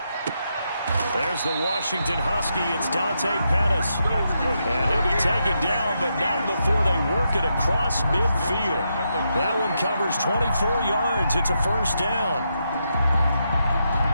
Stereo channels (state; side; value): inverted; both; correlation -0.83